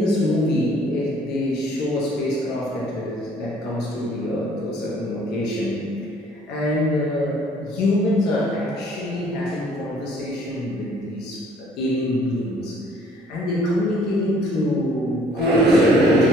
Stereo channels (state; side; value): normal; both; correlation 0.58